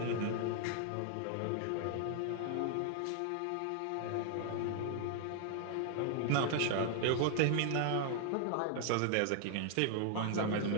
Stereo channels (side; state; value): both; different; correlation 0.00